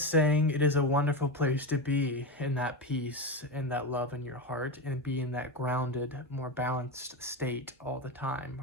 saying it is a wonderful place to be, in that peace and that love in your heart, and be in that grounded, more balanced state all the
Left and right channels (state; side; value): normal; both; correlation 0.17